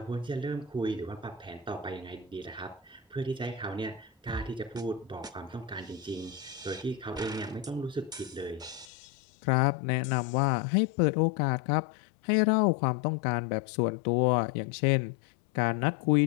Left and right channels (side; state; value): right; drops out; at 8.8 s